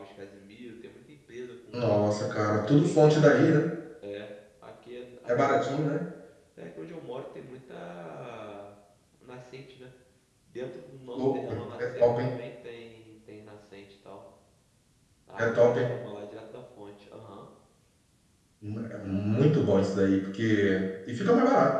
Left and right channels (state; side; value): identical; both; correlation 1.00